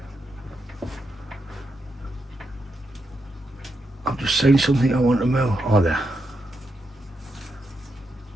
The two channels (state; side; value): normal; both; correlation 0.83